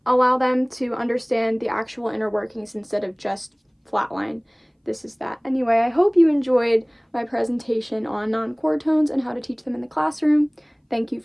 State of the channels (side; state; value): both; identical; correlation 1.00